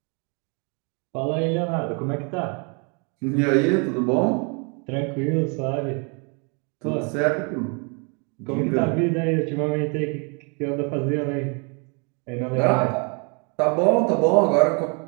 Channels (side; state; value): left; quieter; 35.1 dB